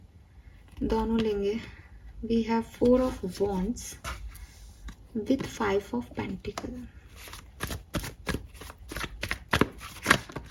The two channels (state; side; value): identical; both; correlation 1.00